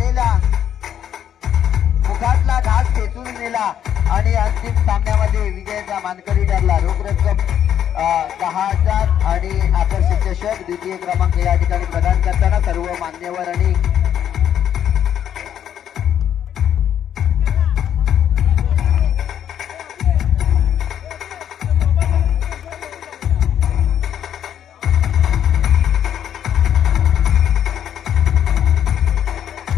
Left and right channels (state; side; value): quieter; right; 9.7 dB